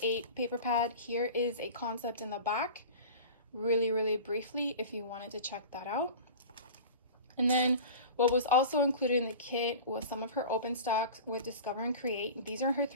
paper pad. Here is a concept in the back, really briefly, if you wanted to check that out. And then what was also included in the kit was some of her open stocks with Discover and Create. These are her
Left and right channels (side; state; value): both; inverted; correlation -0.36